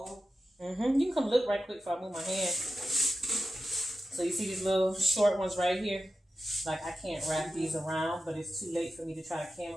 Mm-hmm. You can come look right quick before I move my hand. So you see these little short ones right here? Like I can't wrap these around, but it's too late for me to try to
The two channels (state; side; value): normal; both; correlation 0.93